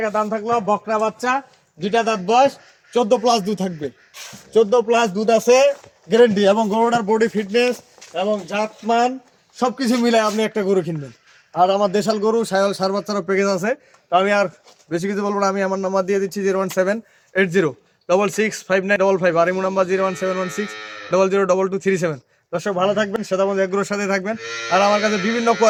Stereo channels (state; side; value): identical; both; correlation 1.00